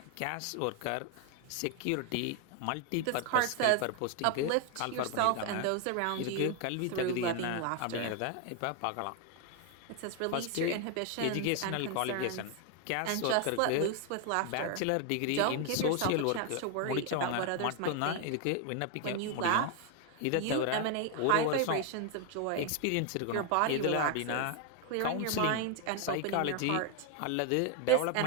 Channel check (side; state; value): both; different; correlation 0.01